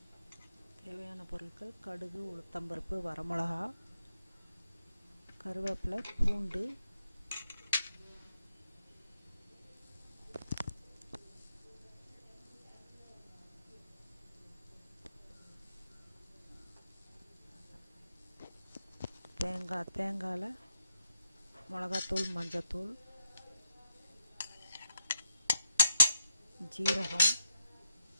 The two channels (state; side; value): inverted; both; correlation -0.81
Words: தேவையான பொருட்கள்: கடுகு, உளுத்தம்பருப்பு, வரமிளகா, கருவேப்பிலை, பூண்டு, தேங்காயில் மிளகாத்தூள், மஞ்சத்தூள், ஜீரகம்,